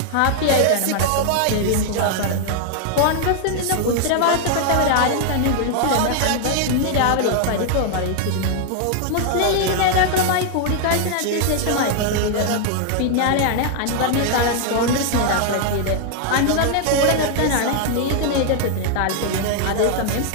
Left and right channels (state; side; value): different; both; correlation 0.00